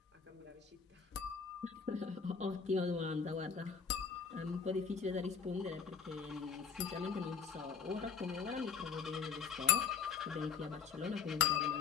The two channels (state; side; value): quieter; right; 6.4 dB